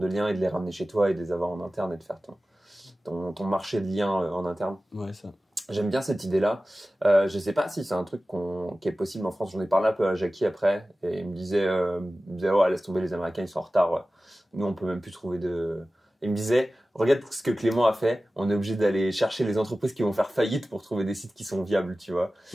liens et de les ramener chez toi et de les avoir en interne et de faire ton marché de liens en interne. Ouais, ça. J'aime bien cette idée-là. Je sais pas si c'est un truc qui est possible en France. J'en ai parlé un peu à Jackie après, et il me disait, laisse tomber, les Américains, ils sont en retard. Nous, on peut même plus trouver de... Il me disait, regarde ce que Clément a fait. On est obligé d'aller chercher les entreprises qui vont faire faillite pour trouver des sites qui sont viables, tu vois.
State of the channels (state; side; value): normal; both; correlation 0.96